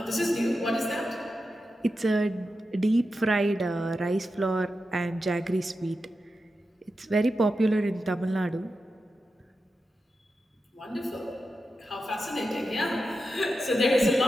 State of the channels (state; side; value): normal; both; correlation 0.90